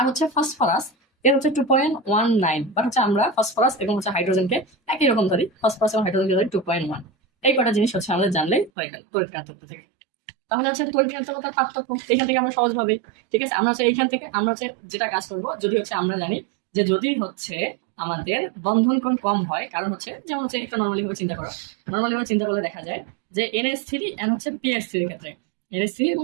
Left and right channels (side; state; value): left; drops out; at 8.7 s